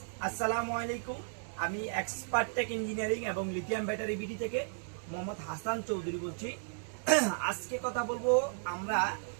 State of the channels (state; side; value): silent; left; digital silence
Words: আসসালামু আলাইকুম। আমি এক্সপার্ট টেক ইঞ্জিনিয়ারিং এবং লিথিয়াম ব্যাটারি বিডি থেকে মোহাম্মদ হাসান চৌধুরী বলছি। আজকে কথা বলবো আমরা